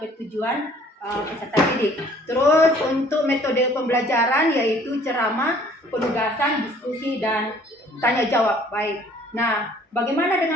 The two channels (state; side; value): normal; both; correlation 0.56